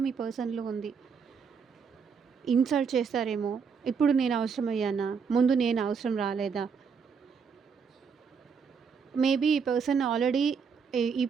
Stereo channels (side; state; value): left; quieter; 6.0 dB